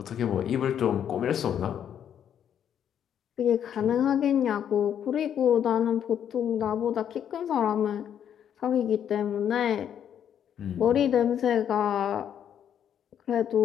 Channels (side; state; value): right; quieter; 9.2 dB